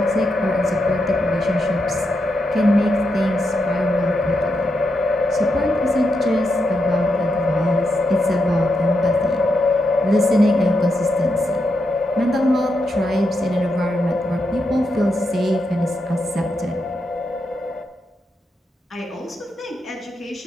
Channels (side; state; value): both; normal; correlation 0.84